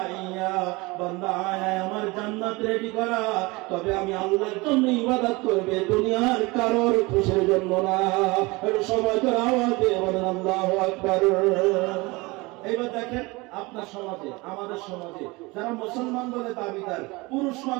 ইয়া, বান্দা আয় আমার জান্নাত রেডি করা, তবে আমি আল্লাহর জন্য ইবাদত করবে, দুনিয়ার কারোর খুশির জন্য না। একটু সবাই করে আওয়াজ দিয়ে বলেন আল্লাহু আকবার। এবার দেখেন, আপনার সমাজে, আমাদের সমাজে যারা মুসলমান বলে দাবিদার পুরুষ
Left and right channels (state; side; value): quieter; left; 24.1 dB